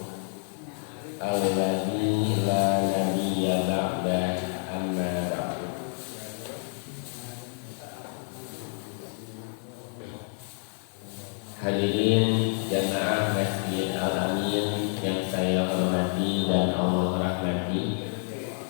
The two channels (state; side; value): silent; right; 57 dB below the other